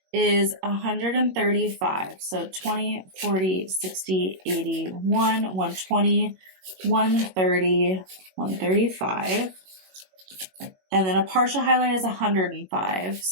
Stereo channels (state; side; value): late; left; 21 ms